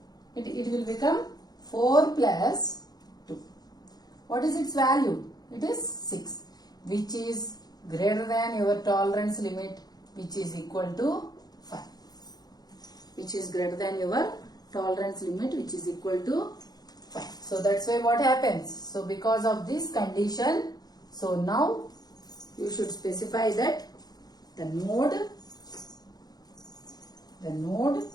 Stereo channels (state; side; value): late; right; 0.19 ms